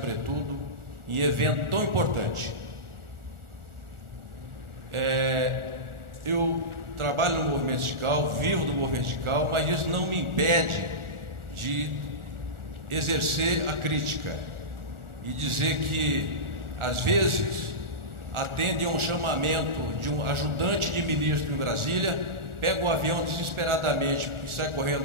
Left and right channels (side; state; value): left; late; 1.4 ms